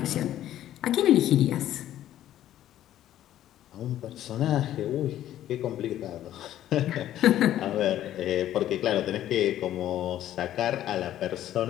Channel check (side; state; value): right; quieter; 12.4 dB